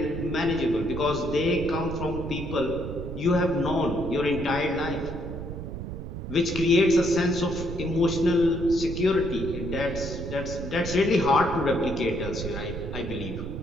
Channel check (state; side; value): noise; right; rumble, 7 dB below the sound